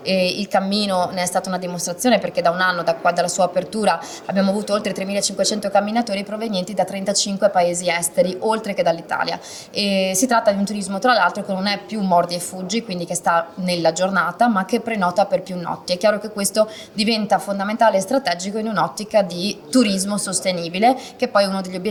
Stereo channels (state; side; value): identical; both; correlation 1.00